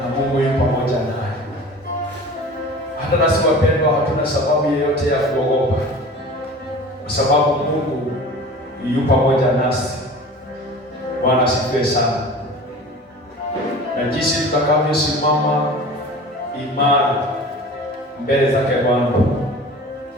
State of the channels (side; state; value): both; normal; correlation 0.39